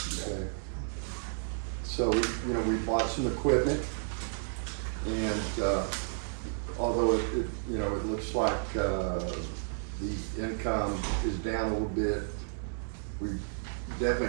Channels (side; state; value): left; silent; 56 dB below the other